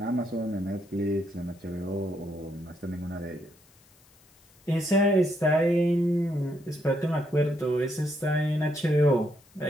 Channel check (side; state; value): left; noise; hiss, 30 dB below the sound